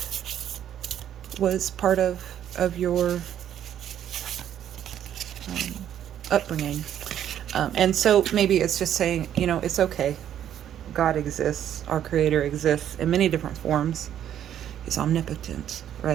was part of your upbringing. And so maybe it's just saying, it's okay. God exists. Our Creator exists in many different forms. He's omnipotent,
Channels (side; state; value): left; quieter; 10.3 dB